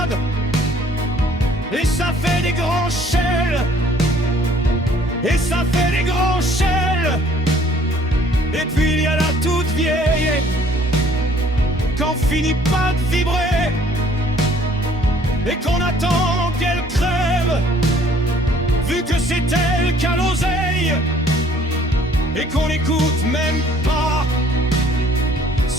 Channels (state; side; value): normal; both; correlation 0.58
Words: et ça fait des grands chels, et ça fait des grands chels. Et puis il y a la toute vieille, qu'on finit pas de vibrer, et qu'on attend qu'elle crève, vu que c'est elle qui a l'oseille, et qu'on n'écoute même pas